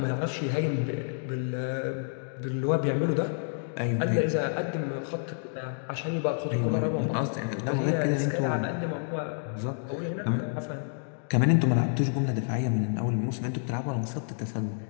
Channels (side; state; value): right; silent; digital silence